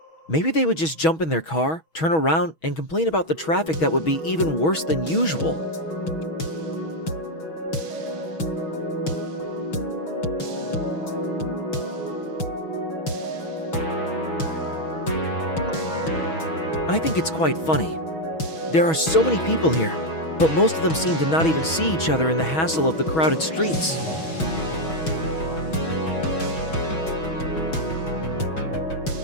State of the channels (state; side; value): late; right; 6.2 ms